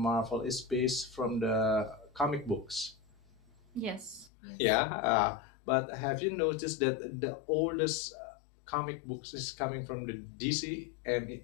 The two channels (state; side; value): drops out; right; at 4.3 s